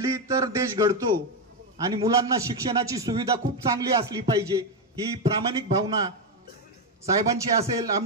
तर देश घडतो आणि मुलांना शिक्षणाची सुविधा खूप चांगली असली पाहिजे ही प्रामाणिक भावना साहेबांची असेल,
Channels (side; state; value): both; normal; correlation 0.07